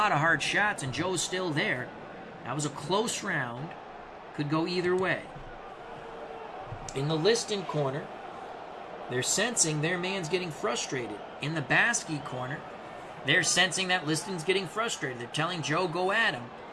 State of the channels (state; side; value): identical; both; correlation 1.00